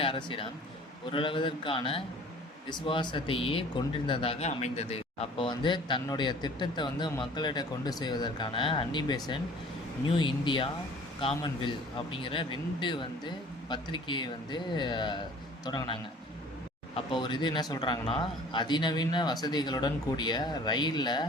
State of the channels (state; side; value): normal; both; correlation 0.48